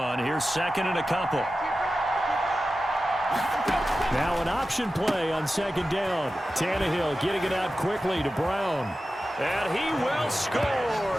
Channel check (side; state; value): both; normal; correlation 0.94